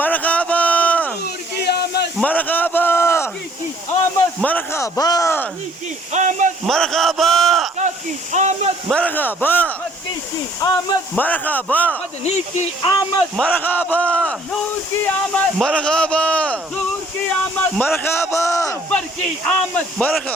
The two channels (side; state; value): both; normal; correlation 0.59